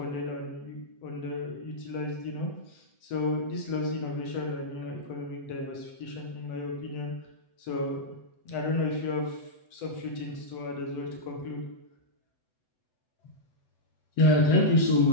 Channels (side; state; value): right; late; 7.9 ms